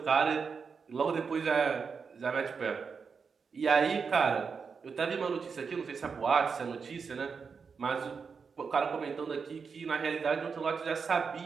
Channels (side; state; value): left; quieter; 5.6 dB